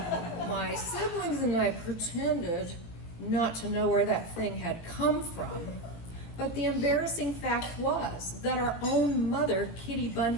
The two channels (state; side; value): late; right; 18 ms